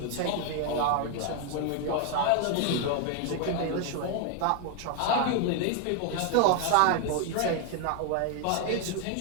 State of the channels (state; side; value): different; both; correlation 0.01